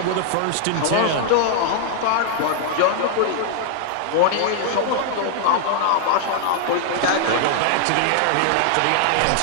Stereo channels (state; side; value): different; both; correlation 0.00